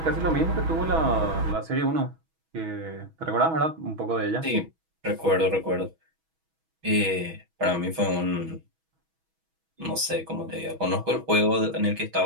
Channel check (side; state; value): left; late; 6.2 ms